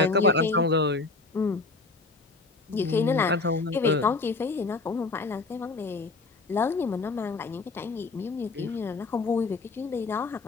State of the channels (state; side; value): quieter; right; 3.7 dB